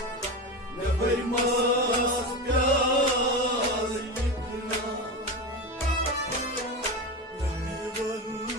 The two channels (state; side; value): normal; both; correlation 0.21